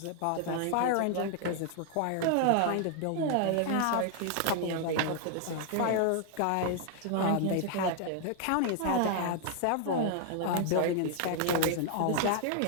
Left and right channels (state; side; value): different; both; correlation 0.00